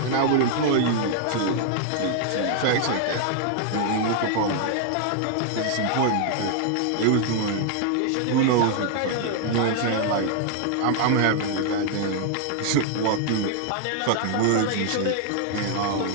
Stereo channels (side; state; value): both; different; correlation 0.00